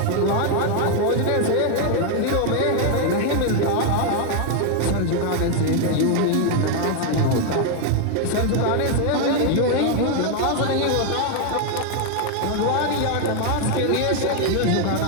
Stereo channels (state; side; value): different; both; correlation 0.01